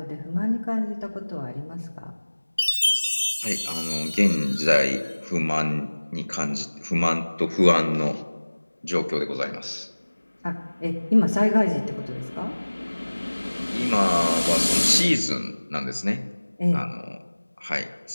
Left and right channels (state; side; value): inverted; both; correlation -1.00